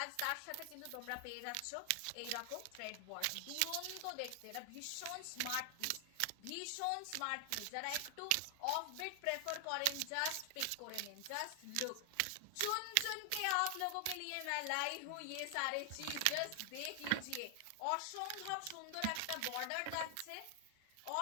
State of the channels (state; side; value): different; both; correlation 0.00